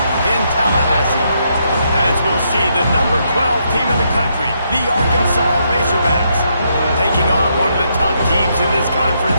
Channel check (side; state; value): both; inverted; correlation -0.77